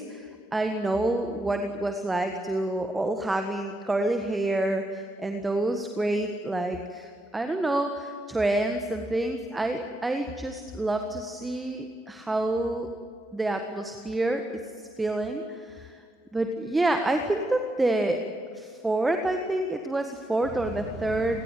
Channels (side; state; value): both; normal; correlation 0.81